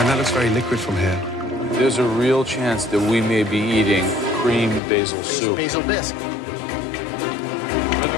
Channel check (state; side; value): drops out; right; at 4.8 s